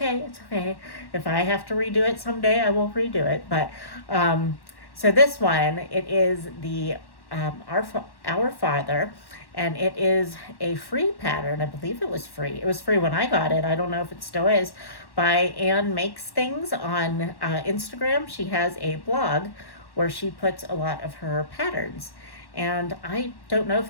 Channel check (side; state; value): right; late; 1.1 ms